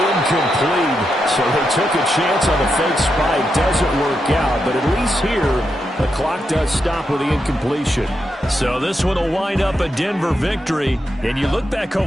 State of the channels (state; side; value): normal; both; correlation 0.85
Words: So they took a chance on the fake spike. Doesn't work out, but at least here, the clock does stop with the incompletion. So this one will wind up a Denver victory. And you look back